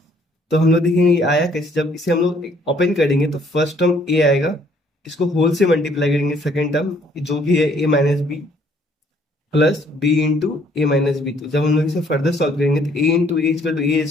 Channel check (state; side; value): normal; both; correlation 0.63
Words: तो हम लोग देखेंगे ये आया कैसे। जब इसे हम लोग ओपन करेंगे तो फर्स्ट टर्म ए आएगा, इसको होल से मल्टीप्लाई करेंगे सेकेंड टर्म जो भी है a minus b plus b into a minus b. तो जब हम लोग इसे फर्दर सॉल्व करेंगे तो a into a equal to a